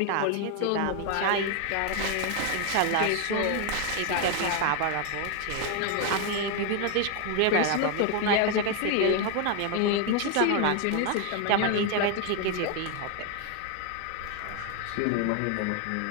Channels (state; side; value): different; both; correlation 0.01